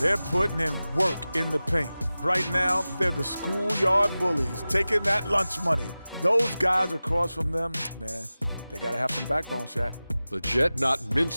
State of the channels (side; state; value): both; inverted; correlation -0.96